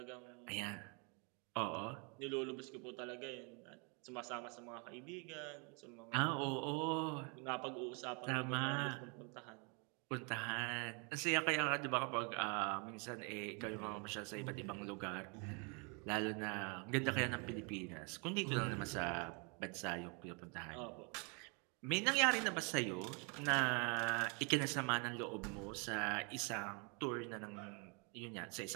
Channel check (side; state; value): left; quieter; 34.2 dB